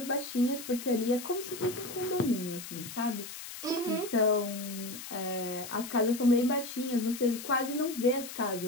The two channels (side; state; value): left; noise; hiss, 11 dB below the sound